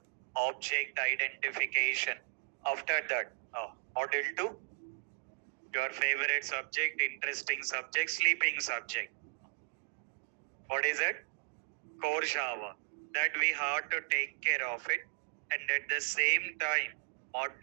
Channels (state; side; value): silent; left; 54 dB below the other